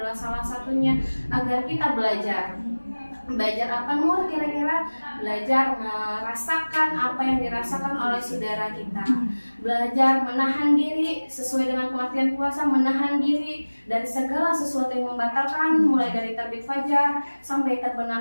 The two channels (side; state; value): both; inverted; correlation -1.00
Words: salah satunya agar kita belajar apa Nur kira-kira? Belajar merasakan apa yang dirasakan oleh saudara kita, belajar menahan diri sesuai dengan pengertian puasa, menahan diri dari segala sesuatu yang membatalkan mulai dari terbit fajar sampai